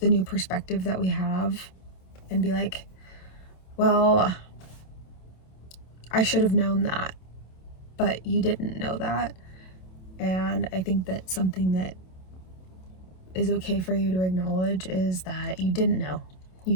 new perspective that we have and be like, well, I should have known that, but you didn't know that. And I think that something that is okay for you to acknowledge is that you didn't know. You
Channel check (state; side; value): late; right; 27 ms